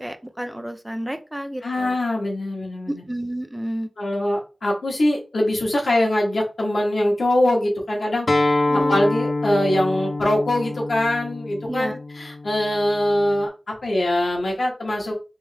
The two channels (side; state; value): both; normal; correlation 0.96